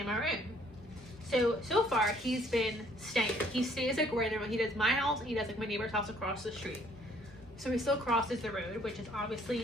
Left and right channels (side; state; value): both; normal; correlation 0.62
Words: our own. So far he's been staying. He stays like right there. He does my house and he does like my neighbor's house across the street. So he still crosses the road, which is